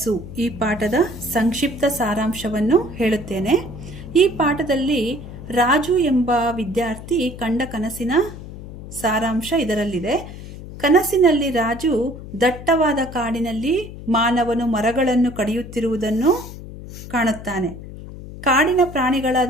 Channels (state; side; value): noise; left; hum, 13 dB below the sound